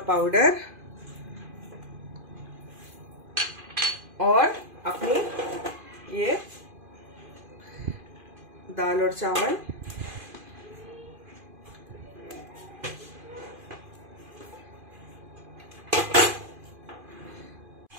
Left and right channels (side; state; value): left; late; 2.5 ms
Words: पाउडर और अपनी ये दाल और चावल।